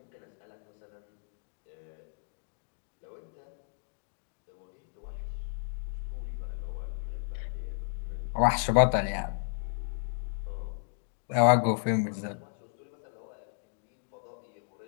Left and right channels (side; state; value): right; silent; 55 dB below the other